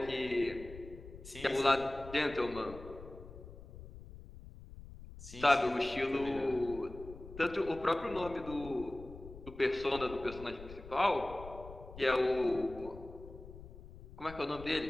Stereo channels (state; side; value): noise; left; rumble, 15 dB below the sound